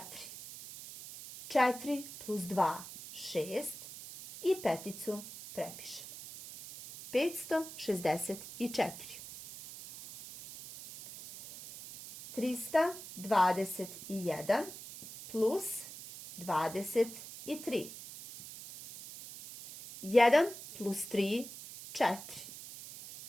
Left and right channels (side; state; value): right; noise; hiss, 13 dB below the sound